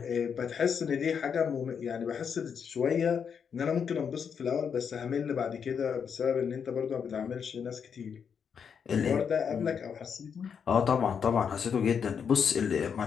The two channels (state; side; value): quieter; right; 7.0 dB